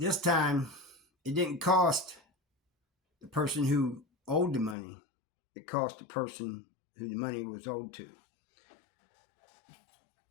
time it didn't cost the person who owed the money. It cost the person who the money was owed to.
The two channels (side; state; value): right; drops out; at 4.8 s